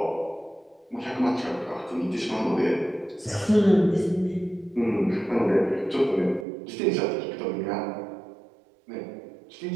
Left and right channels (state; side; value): drops out; left; at 6.5 s